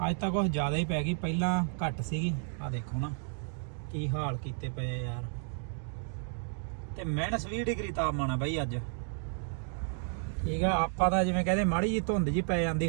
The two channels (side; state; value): left; silent; 56 dB below the other